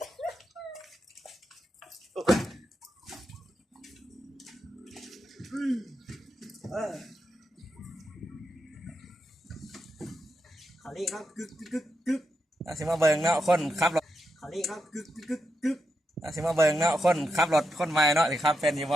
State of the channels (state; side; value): normal; both; correlation 0.84